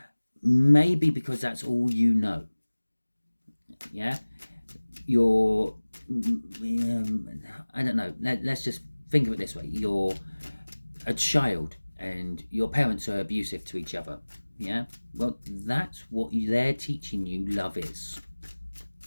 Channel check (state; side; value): inverted; both; correlation -1.00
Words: Maybe because that's all you know. Yeah? You're... I don't know. Let's just think of it this way. You're a child and your parents are abusive to each other. Yeah, well, that's what they're teaching you love is.